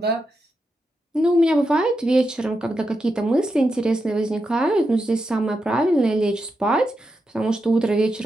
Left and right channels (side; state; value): both; normal; correlation 0.86